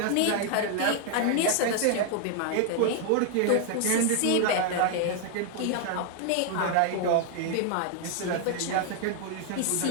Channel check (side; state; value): both; different; correlation 0.00